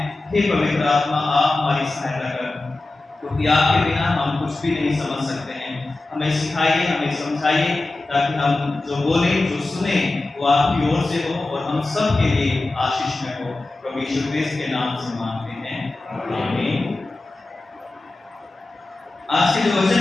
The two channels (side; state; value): right; quieter; 3.0 dB